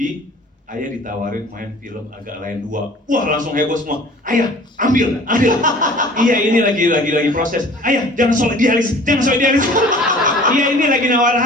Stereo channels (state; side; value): normal; both; correlation 0.47